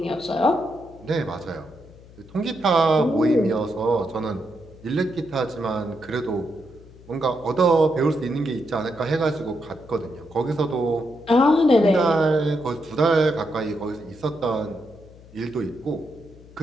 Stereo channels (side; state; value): left; noise; hum, 22 dB below the sound